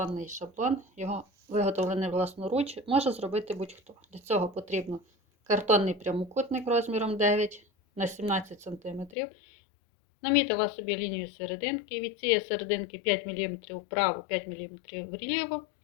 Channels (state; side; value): drops out; right; at 9.2 s